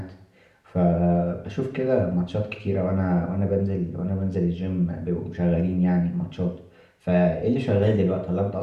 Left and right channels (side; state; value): both; identical; correlation 1.00